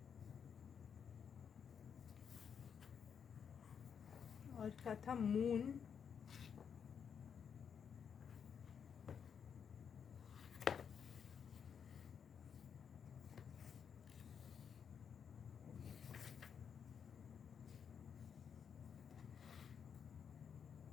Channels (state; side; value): quieter; right; 7.2 dB